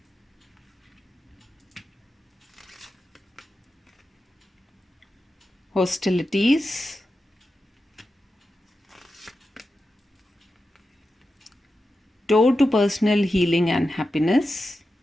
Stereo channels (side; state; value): both; normal; correlation 0.90